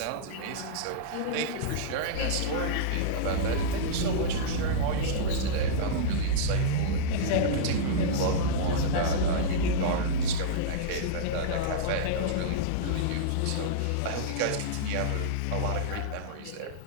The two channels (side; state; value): both; different; correlation -0.03